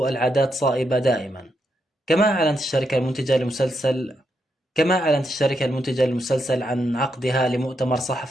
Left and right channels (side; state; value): both; normal; correlation 0.81